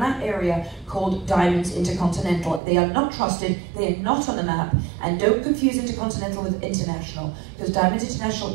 that area called Diamonds Intercontinental. They are not trusted, they are not on the map, and don't confuse Intercontinental with International, because Diamonds International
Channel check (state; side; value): drops out; left; at 2.6 s